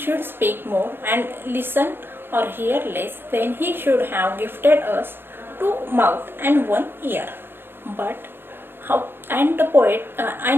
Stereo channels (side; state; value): left; late; 0.10 ms